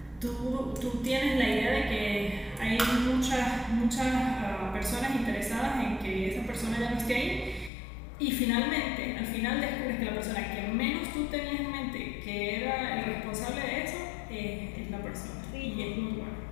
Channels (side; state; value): right; drops out; at 7.7 s